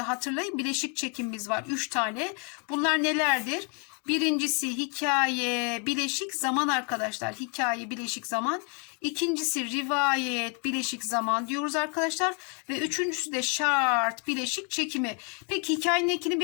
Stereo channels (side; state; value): right; quieter; 36.5 dB